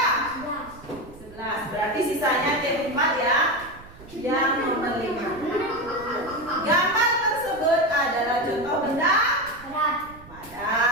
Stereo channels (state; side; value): noise; right; rumble, 20 dB below the sound